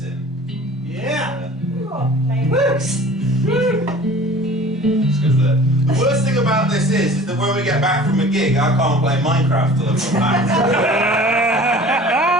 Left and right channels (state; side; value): normal; both; correlation 0.45